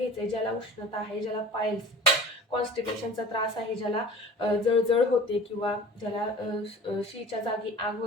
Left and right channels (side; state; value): both; normal; correlation 0.42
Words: ज्याला उष्णता आहे, ज्याला पायल्स कॉन्स्टिपेशनचा त्रास आहे, ज्याला जळजळ होते, किंवा ज्याला शीच्या जागी आग